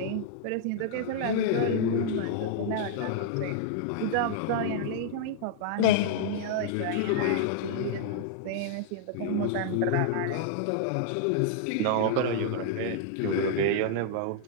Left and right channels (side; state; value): both; different; correlation -0.01